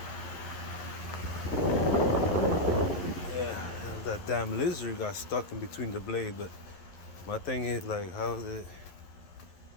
yeah, that damn lizard got stuck in between the blade. But my thing is, like, how is it?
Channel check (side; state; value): right; late; 11 ms